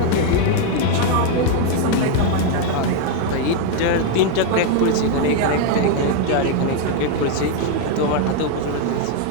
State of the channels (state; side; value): different; both; correlation 0.00